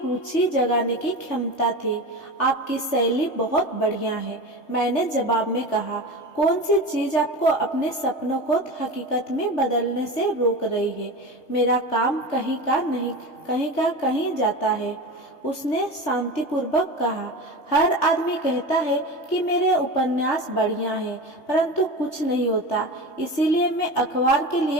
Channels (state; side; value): late; right; 3.3 ms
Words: जगाने की क्षमता थी। आपकी शैली बहुत बढ़िया है, मैंने जवाब में कहा। कौन सी चीज आपको अपने सपनों को हकीकत में बदलने से रोक रही है? मेरा काम कहीं जाता है, उसने शांतिपूर्वक कहा। हर आदमी कहता है कि मेरे उपन्यास बढ़िया हैं, परंतु कुछ नहीं होता। इसीलिए मैं अखबार के